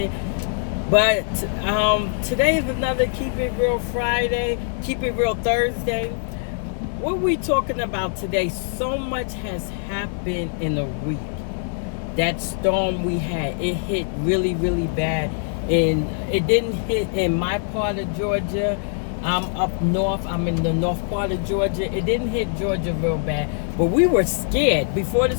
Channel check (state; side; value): silent; right; digital silence